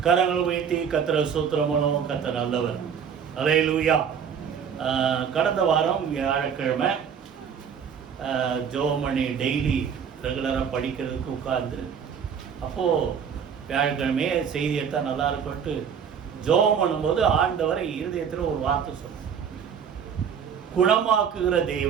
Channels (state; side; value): quieter; left; 7.3 dB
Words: கரங்கள் உயர்த்தி கர்த்தரை ஸ்தோத்திரம் பண்ணுவோம். கர்த்தர் நல்லவர். அல்லேலூயா. கடந்த வாரம் வியாழக்கிழமை ஜோமணி டெய்லி ரெகுலராக படிக்கிறதுக்கு உட்கார்ந்து அப்போது வியாழக்கிழமையே செய்தியை தான் நல்லா இருக்கும்ட்டு ஜோம் பண்ணும்போது ஆண்டவரை இருதயத்தில் ஒரு வார்த்தை சொல்லுங்க, குணமாக்குகிற